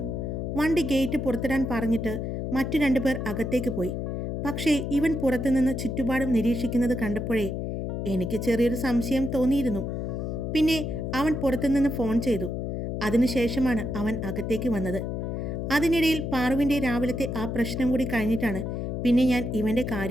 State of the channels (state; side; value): noise; left; hum, 3 dB below the sound